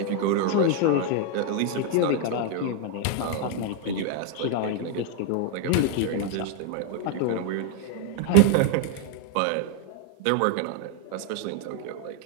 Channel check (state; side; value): different; both; correlation 0.01